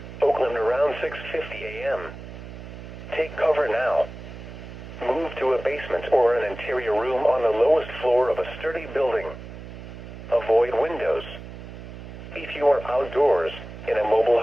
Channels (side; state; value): right; noise; hum, 13 dB below the sound